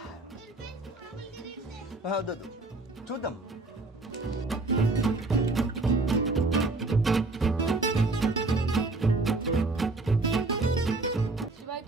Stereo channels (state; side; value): quieter; left; 3.3 dB